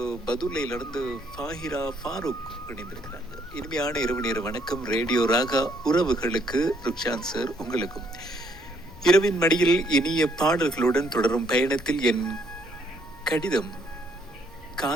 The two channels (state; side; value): normal; both; correlation 0.69